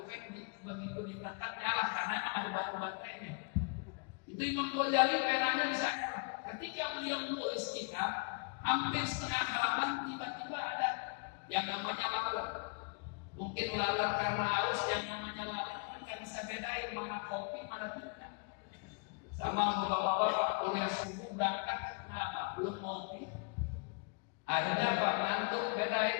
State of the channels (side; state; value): right; quieter; 37.1 dB